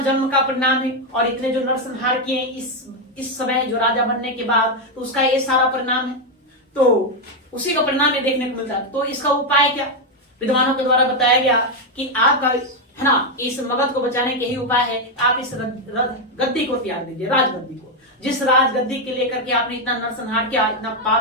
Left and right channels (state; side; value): normal; both; correlation 0.04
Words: का परिणाम है, और इतने जो नरसंहार किए इस समय जो राजा बनने के बाद, तो उसका ये सारा परिणाम है, तो उसी का परिणाम ये देखने को मिलता है। तो इसका उपाय क्या, विद्वानों के द्वारा बताया गया कि आपका है ना, इस मगध को बचाने के ही उपाय है, आप इस गद्दी को त्याग दीजिए, राजगद्दी को। जिस राजगद्दी के लेकर के आपने इतना नरसंहार किया, इतना